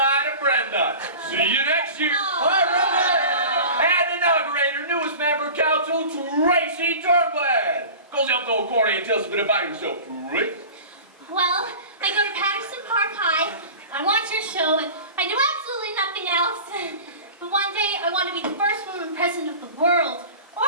to Brenda. See you next year. Bye, Brenda. And inaugurate our newest member of council, Tracy Turnblack. Goes up to old Corny and tells us a bit about yourself, Tracy. Well, I go to Patterson Park High, I watch your show, and I do absolutely nothing else. But one day, I want to be the first woman president of the world, or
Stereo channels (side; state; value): both; inverted; correlation -0.37